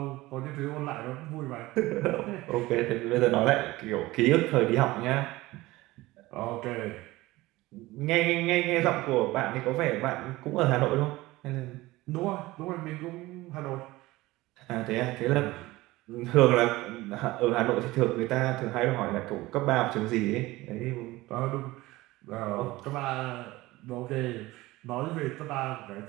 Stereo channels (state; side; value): quieter; left; 19.2 dB